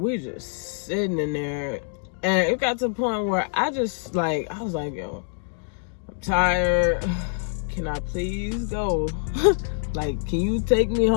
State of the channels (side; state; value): right; silent; 59 dB below the other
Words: we just sitting in there, and it got to the point where I was like, yo, I'm tired. Can I please go? Like, can you take me